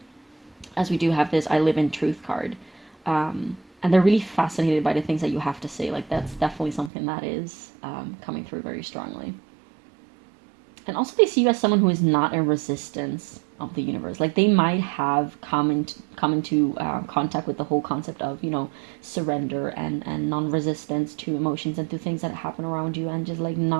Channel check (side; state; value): left; drops out; at 6.9 s